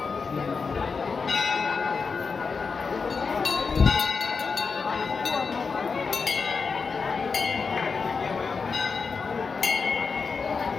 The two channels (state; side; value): quieter; right; 5.0 dB